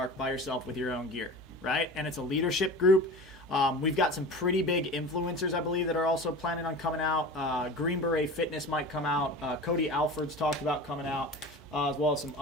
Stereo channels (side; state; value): both; normal; correlation 0.34